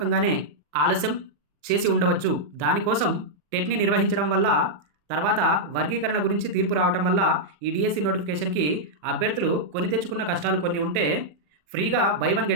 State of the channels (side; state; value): left; late; 40 ms